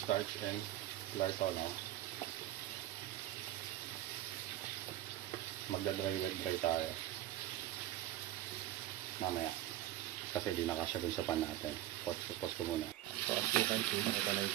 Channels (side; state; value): left; quieter; 14.0 dB